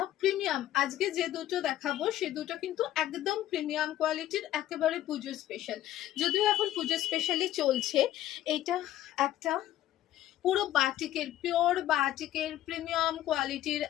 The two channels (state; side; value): quieter; right; 13.2 dB